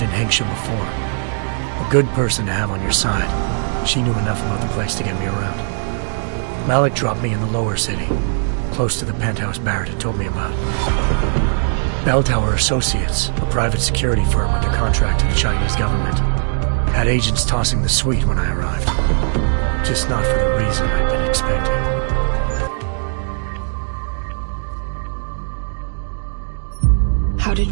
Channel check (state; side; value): silent; left; digital silence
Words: in Hengsha before. A good person to have on your side. She knew enough about the place to get me around. Malik dropped me in the lower city, close to the penthouse Barrett had told me about. Bell Tower Associates, a private security firm under contract to the Chinese government, had agents tossing the suite when I arrived. Just not for the reason I'd been expecting. How did